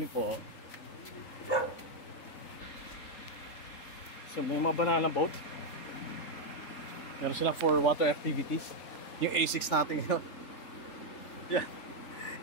po? So may mga banana boat. Meron sila for water activities. Yung A6 natin yun. Yeah.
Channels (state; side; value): late; right; 3.8 ms